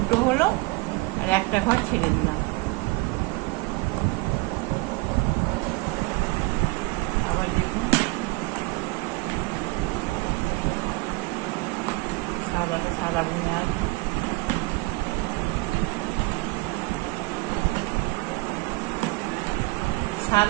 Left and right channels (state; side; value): quieter; left; 23.8 dB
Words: হলো, আর একটা ঘর ছেড়ে দিলাম। আবার দেখুন সাদাটা সাদা বুনে আসবে,